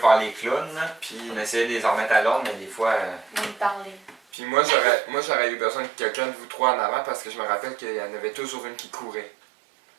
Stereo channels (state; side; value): drops out; left; at 4.2 s